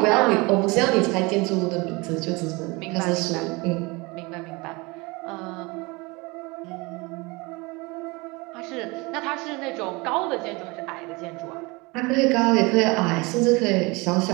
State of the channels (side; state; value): left; quieter; 25.4 dB